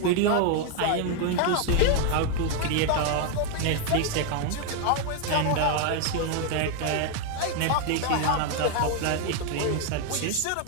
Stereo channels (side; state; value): both; different; correlation 0.00